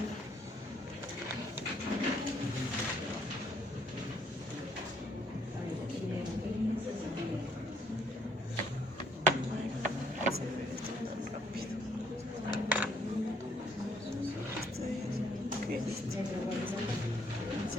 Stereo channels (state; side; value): normal; both; correlation 0.67